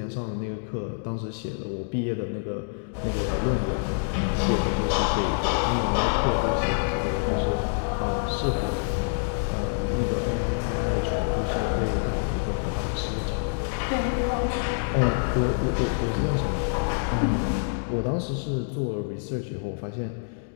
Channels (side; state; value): right; silent; digital silence